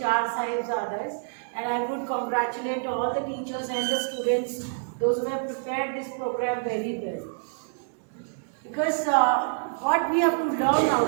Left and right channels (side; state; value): left; silent; digital silence